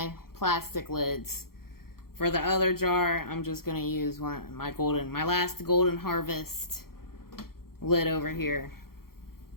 plastic lids. For the other jar, I'm just going to use my last Golden Harvest lid over here.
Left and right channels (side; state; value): right; late; 0.93 ms